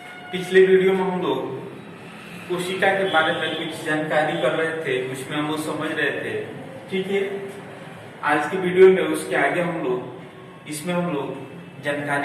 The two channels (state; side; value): identical; both; correlation 1.00